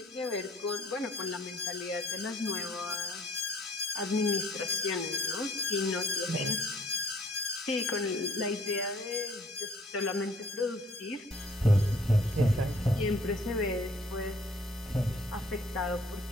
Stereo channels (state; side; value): normal; both; correlation 0.58